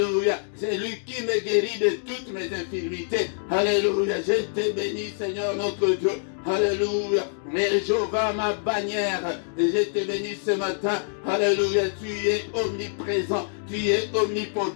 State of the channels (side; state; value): right; silent; digital silence